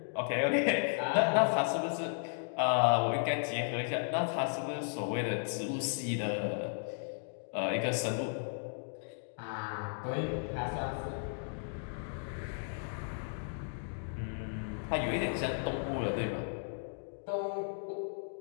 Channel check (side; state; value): right; silent; digital silence